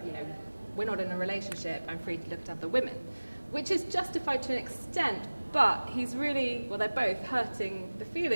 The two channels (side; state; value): both; inverted; correlation -1.00